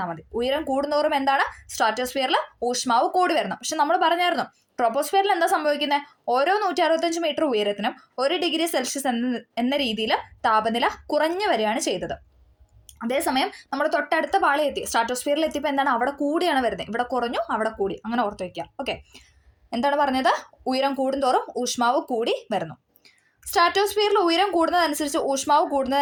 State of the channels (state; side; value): identical; both; correlation 1.00